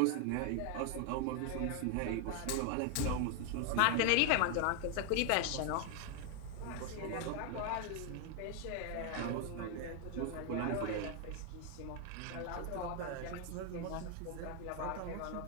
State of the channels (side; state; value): both; different; correlation 0.01